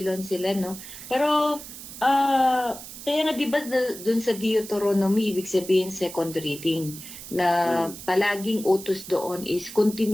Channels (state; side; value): noise; right; hiss, 13 dB below the sound